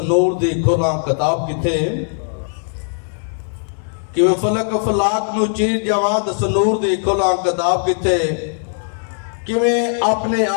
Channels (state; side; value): silent; right; digital silence